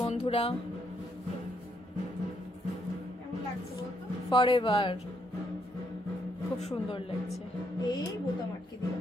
বন্ধুরা। কেমন লাগছে বলতো? ফরএভার, খুব সুন্দর লাগছে। এই বোতাম আটকে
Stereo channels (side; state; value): both; normal; correlation 0.74